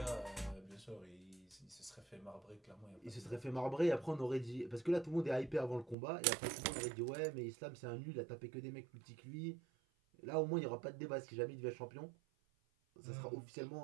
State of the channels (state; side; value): drops out; left; at 6.0 s